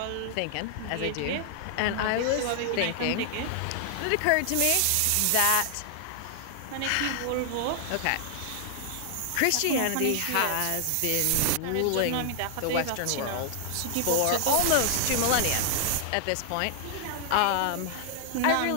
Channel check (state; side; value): different; both; correlation 0.00